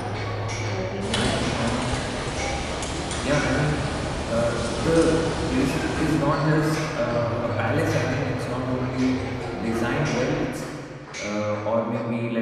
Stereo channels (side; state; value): both; identical; correlation 1.00